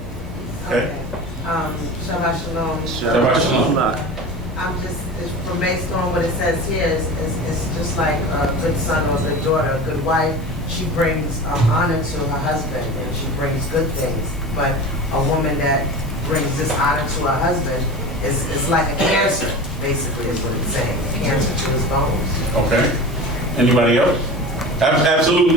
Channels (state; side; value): normal; both; correlation 0.33